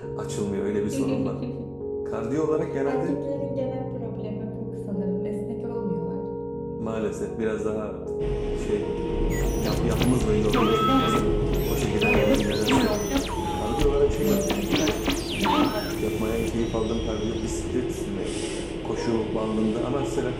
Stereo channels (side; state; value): both; identical; correlation 1.00